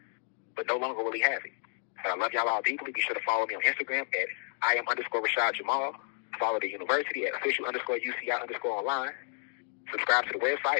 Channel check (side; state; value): right; silent; digital silence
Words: But no longer will he have it. But I love y'all all deeply. Be sure to follow me on Instagram at @IAM_Rashad Jamal. Follow the university at official_UCI_online. Subscribe to the